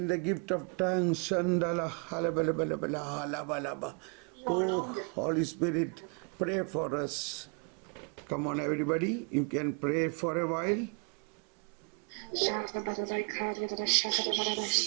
the gift of tongues. Shandala halabalabalabala halabalaba. Oh Holy Spirit, pray for us. Come on everybody, you can pray for a while.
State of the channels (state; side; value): quieter; left; 35.3 dB